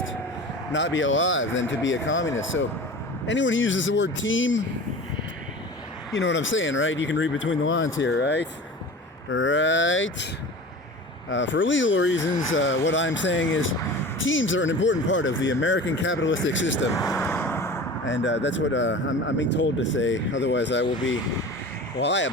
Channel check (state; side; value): normal; both; correlation 0.36